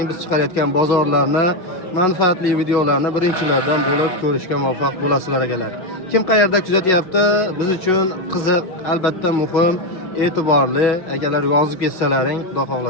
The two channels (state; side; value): late; right; 5.4 ms